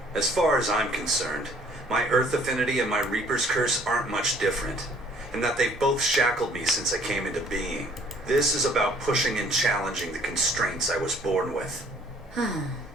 As far as I'm concerned, my Earth affinity and my Reaper's curse aren't much different, in that they've both shackled me since I came into being. This is about pushing and challenging the constraints I was born with.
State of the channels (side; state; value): both; normal; correlation 0.57